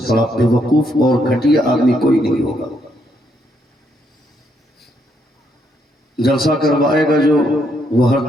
بڑا بے وقوف اور گھٹیا آدمی کوئی نہیں ہوگا۔ جلسہ کروائے گا جو وہ ہر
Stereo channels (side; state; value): both; normal; correlation 0.75